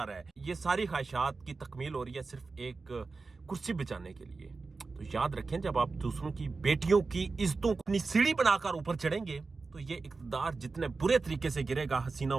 रहा है। ये सारी ख्वाहिशात की तकमील हो रही है सिर्फ एक कुर्सी बचाने के लिए। तो याद रखें, जब आप दूसरों की बेटियों की इज्जतों को अपनी सीढ़ी बनाकर ऊपर चढ़ेंगे तो ये इक़्तिदार जितने बुरे तरीके से गिरेगा, हसीना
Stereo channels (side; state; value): left; quieter; 4.1 dB